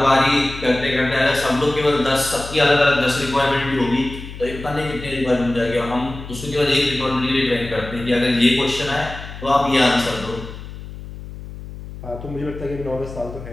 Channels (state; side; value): noise; left; hum, 12 dB below the sound